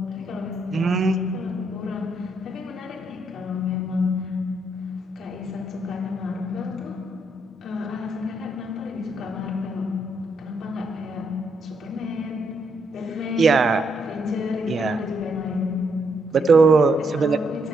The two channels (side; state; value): both; normal; correlation 0.76